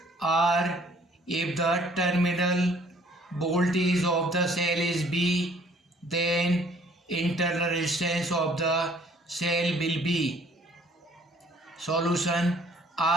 R if the terminal voltage of the cell is B, then internal resistance of the cell will be. Solution:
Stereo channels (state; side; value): normal; both; correlation 0.58